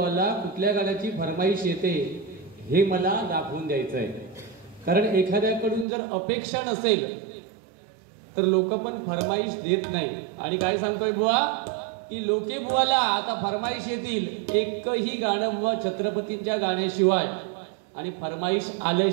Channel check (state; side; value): drops out; left; at 5.9 s